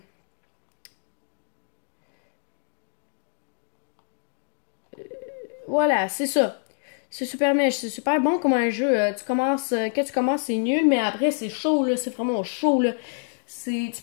Voilà, c'est ça. C'est super mèche, c'est super bon comme un jeu. Tu commences, quand tu commences, c'est nul, mais après, c'est chaud, là. C'est vraiment chaud, là. Tu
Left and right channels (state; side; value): silent; right; digital silence